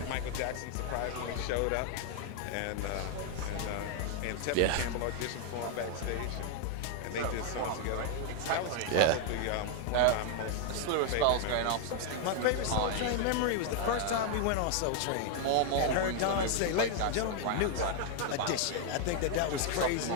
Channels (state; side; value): different; both; correlation 0.00